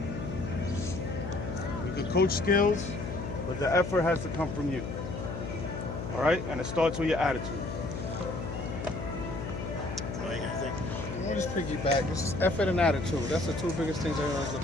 We can coach skills, but the effort has to come from you. All right? And it starts with your attitude. What do you think? I'll just piggyback. It's effort and attitude. That's the two biggest things everyone's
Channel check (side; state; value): left; noise; hum, 6 dB below the sound